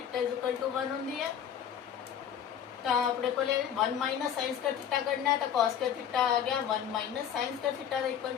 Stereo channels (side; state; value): right; quieter; 9.0 dB